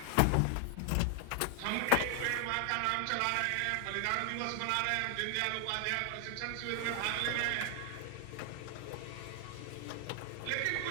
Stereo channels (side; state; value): both; different; correlation 0.00